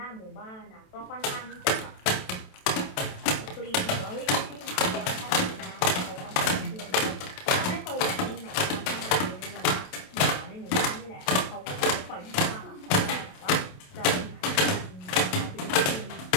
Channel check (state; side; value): late; right; 27 ms